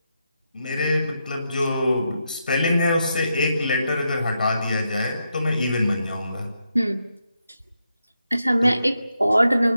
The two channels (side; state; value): both; inverted; correlation -0.84